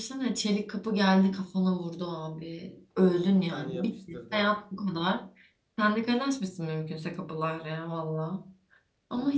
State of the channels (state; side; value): identical; both; correlation 1.00